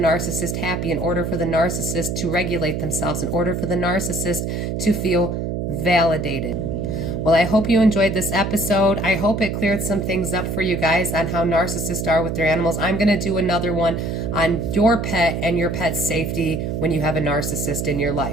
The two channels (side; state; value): right; noise; hum, 2 dB below the sound